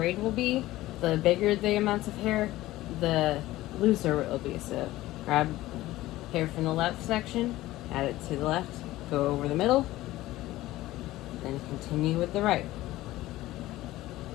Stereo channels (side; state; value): right; quieter; 16.6 dB